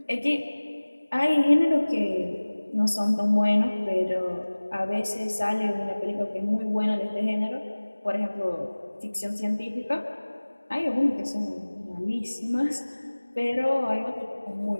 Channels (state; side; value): inverted; both; correlation -1.00